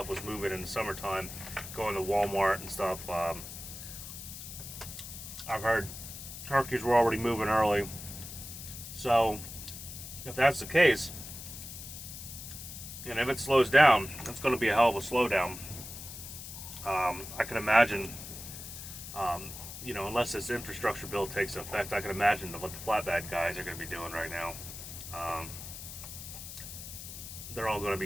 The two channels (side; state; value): left; noise; hiss, 11 dB below the sound